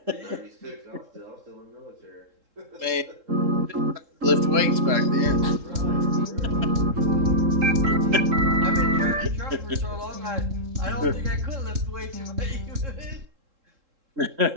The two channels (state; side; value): late; left; 3.7 ms